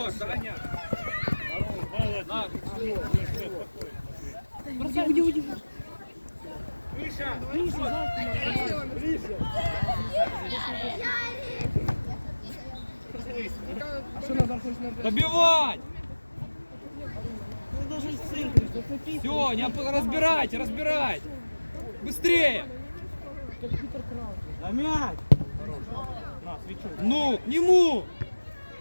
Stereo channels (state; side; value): inverted; both; correlation -1.00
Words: Даня. Бросай, уйди. Миша, А что надо хоть на... добивать! Ты должен в центре, зацепить. Все, не разбирайте, разбирайте! Быстрее! Как Питер Краус. А мяч! На, свечу. Ну, к нему!